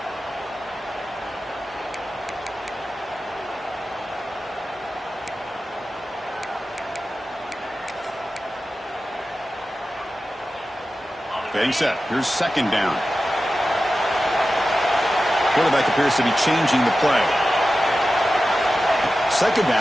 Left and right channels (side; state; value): both; normal; correlation 0.93